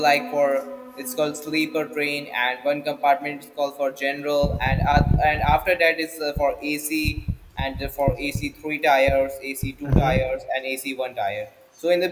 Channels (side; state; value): both; identical; correlation 1.00